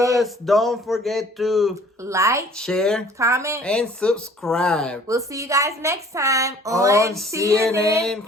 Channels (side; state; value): both; normal; correlation 0.53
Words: Don't forget to like, share, comment, and subscribe. We'll see you guys next time on